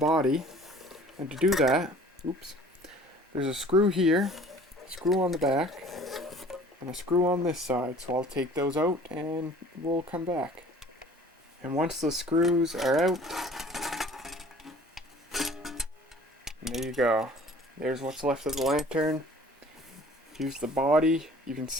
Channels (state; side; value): normal; both; correlation 0.50